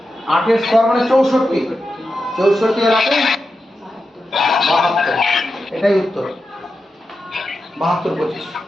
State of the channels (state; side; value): normal; both; correlation 0.90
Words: 8 এর স্কয়ার মানে 64, 64 এর 8 72, এটাই উত্তর। 72 25।